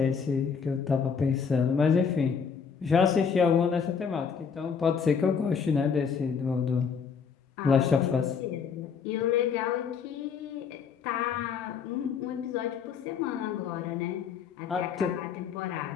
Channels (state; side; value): quieter; right; 6.3 dB